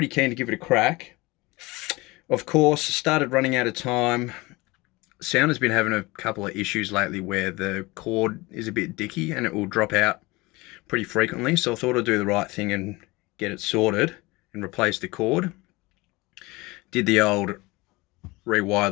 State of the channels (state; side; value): quieter; right; 22.7 dB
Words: keen to give it a crack. Of course, started running out of time. Sound has been having a couple of issues lately where the cord is a bit dicky and it will drop out pretty frequently, so I thought I'd do the right thing and get it sorted and replace the cord. Did the old rewire